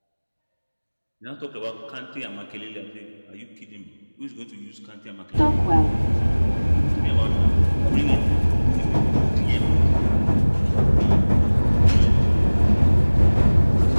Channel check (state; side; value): inverted; both; correlation -1.00